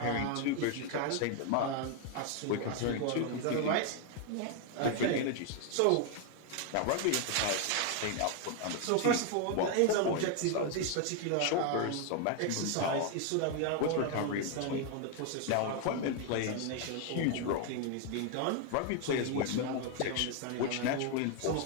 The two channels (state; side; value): different; both; correlation 0.01